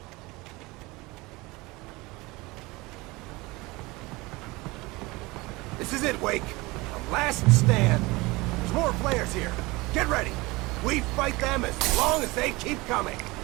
This is it, Wake. The last stand. There's more flares here. Get ready. We fight them as long as they keep coming.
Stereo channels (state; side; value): quieter; left; 22.7 dB